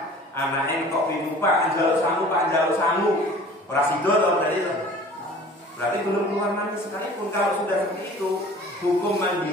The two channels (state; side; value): normal; both; correlation 0.46